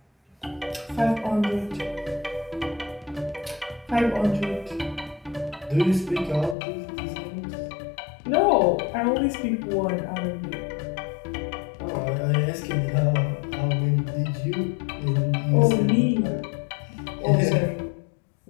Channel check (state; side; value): drops out; right; at 6.6 s